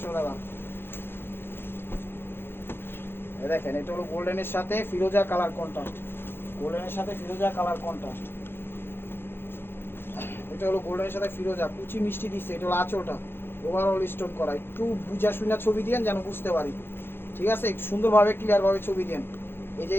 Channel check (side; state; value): right; late; 0.11 ms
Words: টাকা। দেখেন, এটা হলো গোল্ডেনের সাথে ফিরোজা কালার কন্ট্রাস্ট, গোল্ডেনের সাথে ফিরোজা কালার কন্ট্রাস্ট। এটা হলো গোল্ডেনের সাথে ফিরোজা, কুচি মিষ্টি দিচ্ছে। এটা হলো আঁচলটা, ওভারঅল স্টোন করা। একটু বুঝা শুনা ছবি দিয়েন যেন বুঝতে পারি। ঠিক আছে, একটু সুন্দরভাবে ক্লিয়ারভাবে ছবি দেন। এই যে